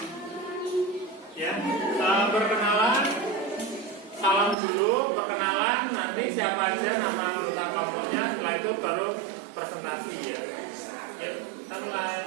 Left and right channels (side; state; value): left; drops out; at 4.5 s